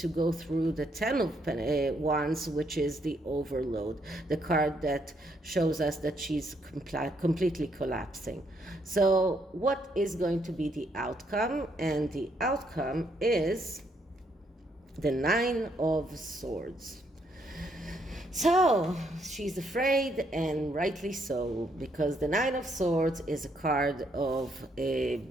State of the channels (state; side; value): normal; both; correlation 0.73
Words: go through the 10 of Wands, which is the overload, the card that shows us that she's completely collapsing. So what is going to be the outcome? And the outcome is the 9 of Swords. So she's afraid, and rightly so, because the 9 of Swords is a card of